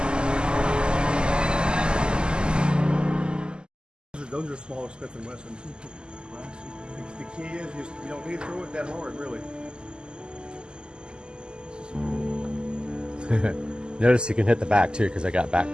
Those are smaller Smith & Wessons. The key is you don't need to throw it that hard, really. Notice you can hit the back too because I got back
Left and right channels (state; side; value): late; left; 0.048 ms